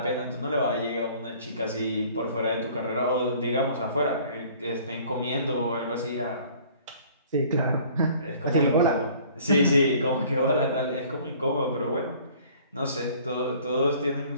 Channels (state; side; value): inverted; both; correlation -0.53